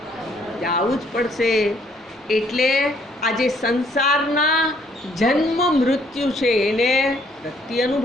જવું જ પડશે. એટલે આ જે સંસારના જન્મ મૃત્યુ છે એને વ્યક્તિ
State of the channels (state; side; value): normal; both; correlation 0.65